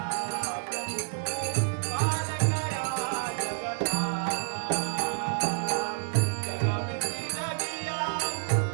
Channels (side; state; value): left; silent; digital silence